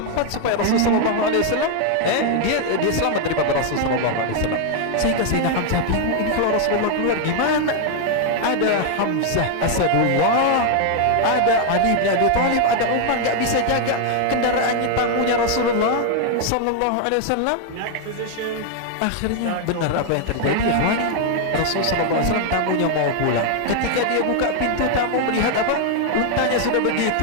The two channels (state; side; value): different; both; correlation 0.00